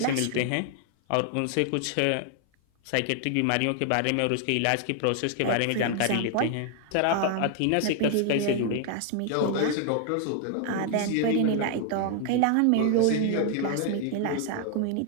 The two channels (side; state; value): both; different; correlation 0.00